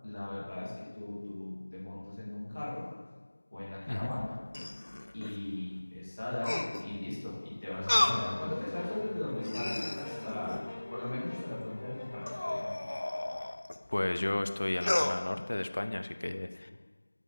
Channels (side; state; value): both; inverted; correlation -1.00